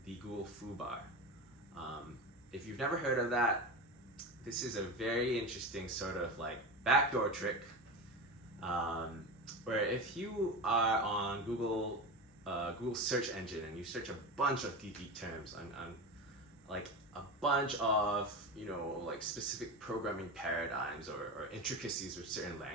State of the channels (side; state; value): both; normal; correlation 0.23